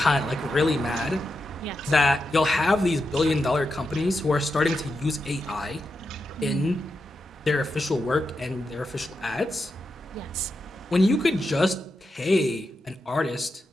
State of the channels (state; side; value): normal; both; correlation 0.87